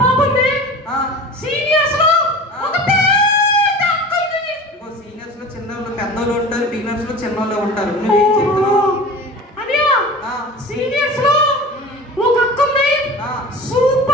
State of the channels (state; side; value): normal; both; correlation 0.36